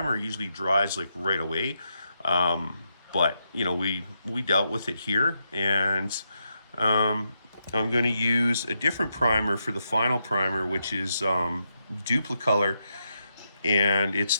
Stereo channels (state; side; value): inverted; both; correlation -0.83